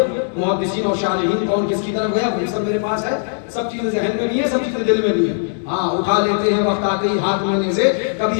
محدثین اور شارحین کون کس کی طرف گیا وہ سب میرے پاس ہے. سب چیزیں ذہن میں بھی ہیں سب چیزیں دل میں بھی ہیں. ہاں اٹھا لیتے ہیں وقت آتے ہی ہاتھ لینے سے. کبھی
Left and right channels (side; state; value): right; silent; digital silence